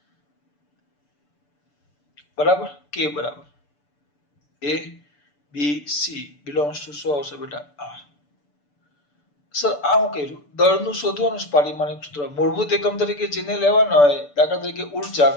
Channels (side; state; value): right; late; 6.9 ms